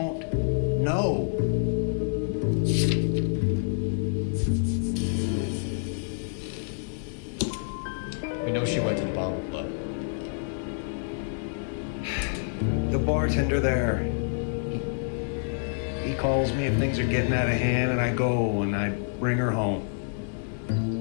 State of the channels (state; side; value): silent; right; 60 dB below the other